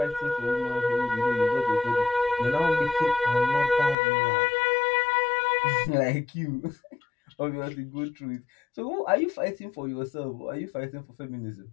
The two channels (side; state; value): right; drops out; at 4.0 s